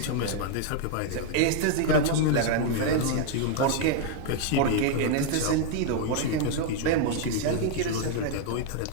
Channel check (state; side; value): different; both; correlation 0.00